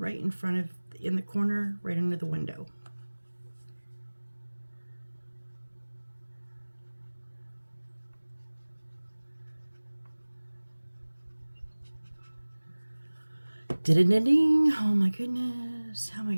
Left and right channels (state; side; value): inverted; both; correlation -1.00